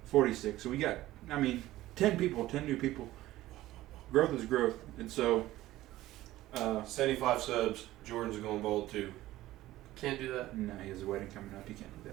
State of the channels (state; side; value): quieter; left; 15.9 dB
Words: 46. So we got, 10 people, 10 new people. Growth is growth. And so, 75 subs. Jordan's going bald too. Can't do that. no, he has a wedding coming up. He can't do